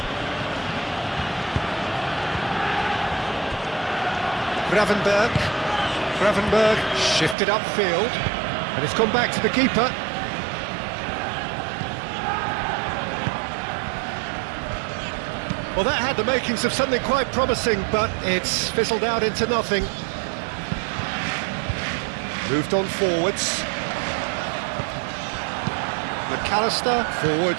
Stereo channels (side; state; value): left; drops out; at 7.4 s